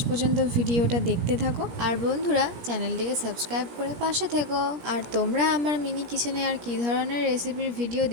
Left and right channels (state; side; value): late; left; 17 ms